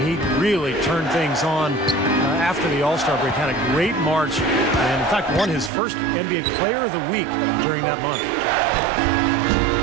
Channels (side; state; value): left; drops out; at 5.7 s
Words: he really turned things on after the All-Star break. Had a great March and, in fact, won his first NBA Player of the Week during that month.